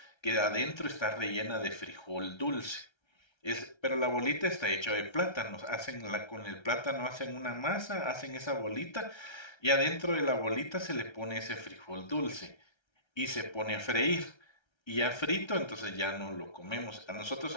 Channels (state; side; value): late; right; 1.3 ms